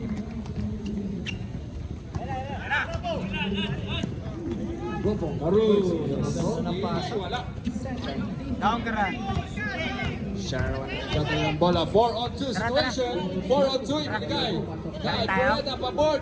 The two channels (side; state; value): both; identical; correlation 1.00